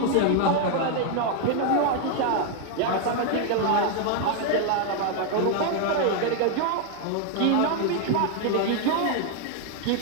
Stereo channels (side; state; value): both; different; correlation 0.00